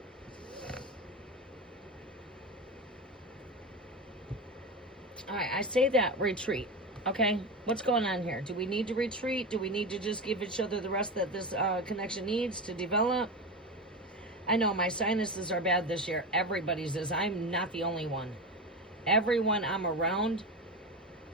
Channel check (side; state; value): both; normal; correlation 0.21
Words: All right, I say that retreat. Okay, what's going on here? Do we need to retreat? Do we need to just give each other the rest that this connection needs to develop? I know my sinuses are bad this year. Everybody's is. I'm not the only one. Everyone I'm around,